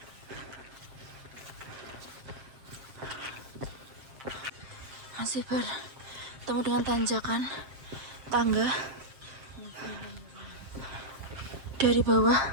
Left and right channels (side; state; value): left; late; 7.5 ms